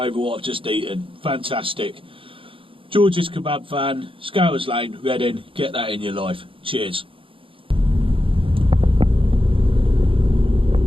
what I've just eaten. Fantastic. George's Kebab Van, Scouters Lane, Reading. Get that in your life. Cheers.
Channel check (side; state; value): left; late; 0.26 ms